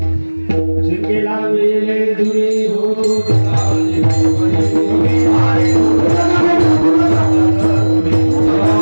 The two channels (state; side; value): inverted; both; correlation -1.00